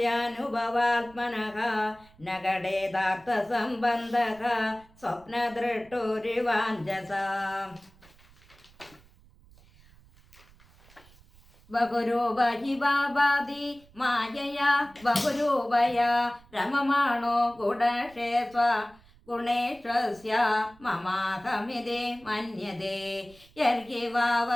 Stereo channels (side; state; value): right; noise; rumble, 27 dB below the sound